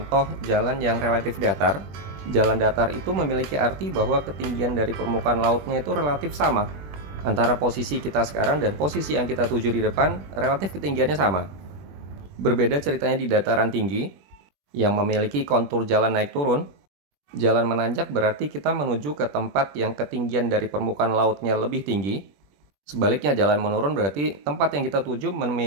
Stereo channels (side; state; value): left; late; 21 ms